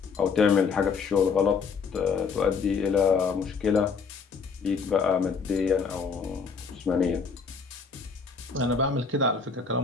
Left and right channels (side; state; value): right; quieter; 5.4 dB